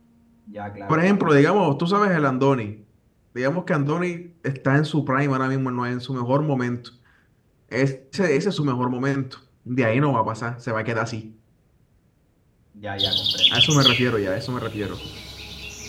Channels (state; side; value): identical; both; correlation 1.00